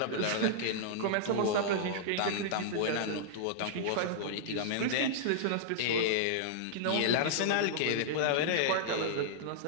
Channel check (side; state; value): both; different; correlation -0.02